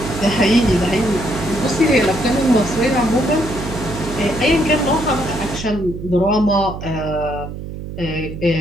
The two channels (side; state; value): right; noise; hum, 9 dB below the sound